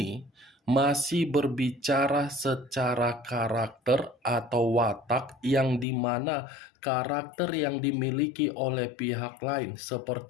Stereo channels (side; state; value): right; drops out; at 5.9 s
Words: masih berbicara secara karakter atau watak, yang dimana karakter yang dimiliki oleh pihak lain